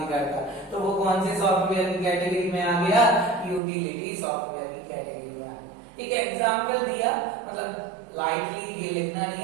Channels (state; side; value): drops out; left; at 3.6 s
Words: करता। तो वो कौन से सॉफ्टवेयर की कैटेगरी में आ गया, यूटिलिटी सॉफ्टवेयर की कैटेगरी में आ गया। एक एग्जाम्पल दिया, मतलब लाइटली ये लिखना नहीं